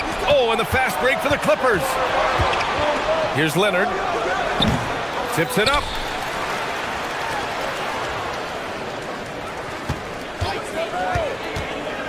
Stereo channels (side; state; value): both; identical; correlation 1.00